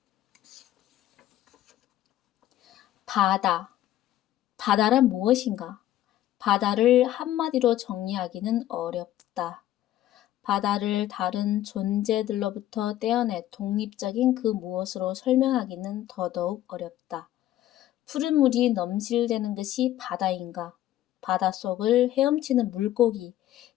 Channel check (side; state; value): right; quieter; 13.3 dB